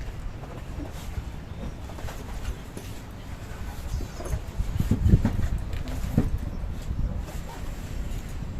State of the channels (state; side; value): identical; both; correlation 1.00